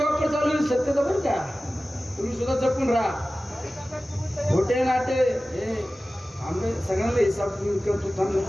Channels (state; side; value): normal; both; correlation 0.96